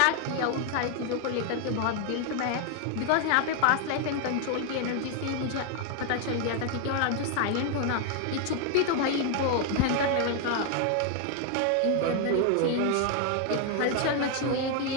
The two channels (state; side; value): different; both; correlation 0.00